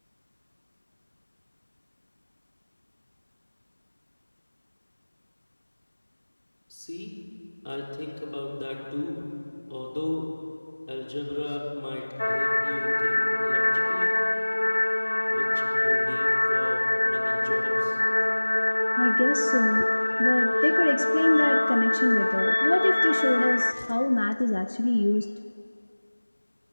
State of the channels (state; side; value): inverted; both; correlation -1.00